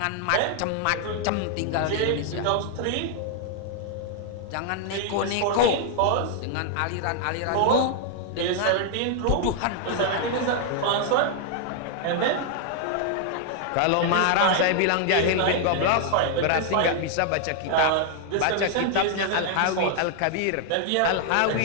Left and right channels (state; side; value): different; both; correlation 0.00